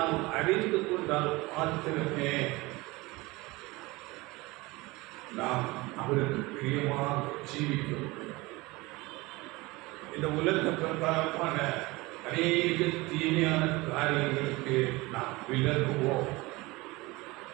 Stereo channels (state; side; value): quieter; left; 22.3 dB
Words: அறிந்து கொண்டால் மாத்திரமே நாம் அவருக்கு பிரியமாக ஜீவிக்க முடியும். இந்த உலக பிரகாரமான அநேக தீமையான காரியங்களுக்கு நாம் விலகுவோம்.